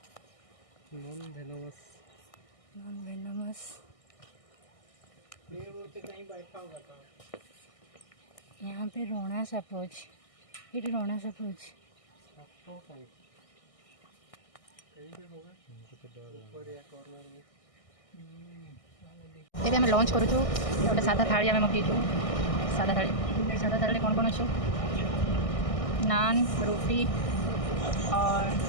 नॉन वेनमस कहीं बैठा होगा था यहाँ पे रोणा साप अच्छे, ये रोणा साप अच्छे। एबे आम लंच करूँ गोटे सादा थाली आम मगेचु। सादा थाली कौन कौन अच्छे? नान, रोटी और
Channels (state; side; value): late; right; 1.6 ms